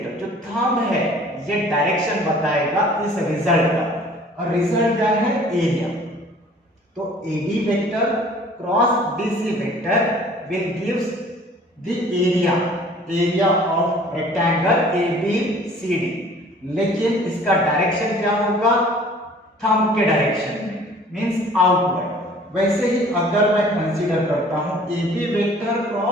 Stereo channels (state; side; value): normal; both; correlation 0.51